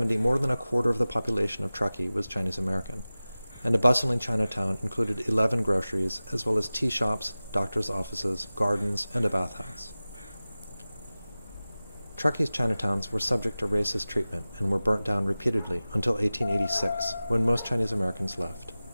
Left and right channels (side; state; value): both; inverted; correlation -0.97